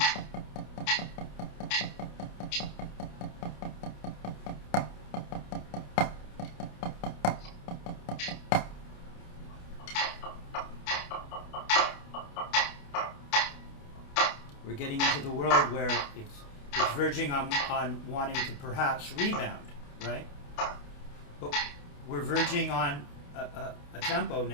We're getting into the world where it's verging on wanting to perhaps rebound, right? But we're verging on a tempo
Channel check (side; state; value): right; late; 28 ms